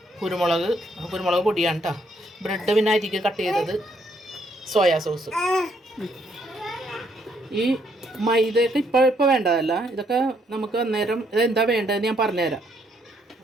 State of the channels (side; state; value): both; normal; correlation 0.71